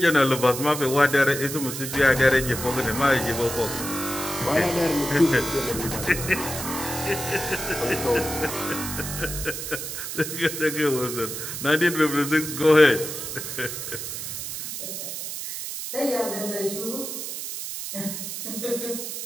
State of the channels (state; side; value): noise; right; hiss, 6 dB below the sound